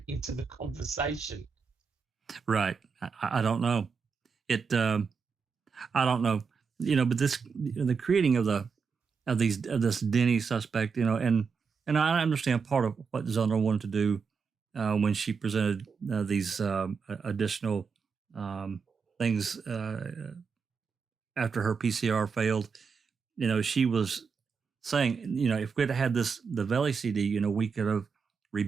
into the conversation? Right. I don't know. I don't know. But this, the creating of this Denny suspect, and I understand part of what Zundel wanted to do when she presented these additional things after her PCR failed. She was saying, if we'd had the Valley CD, we could have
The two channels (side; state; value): left; quieter; 5.6 dB